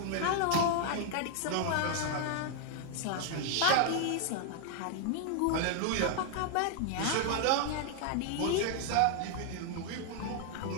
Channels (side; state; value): both; different; correlation 0.00